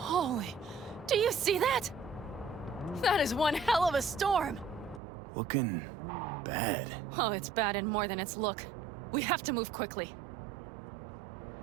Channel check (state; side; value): drops out; left; at 5.0 s